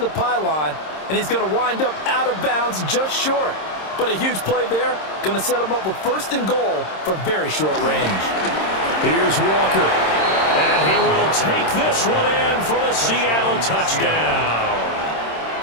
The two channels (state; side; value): late; right; 26 ms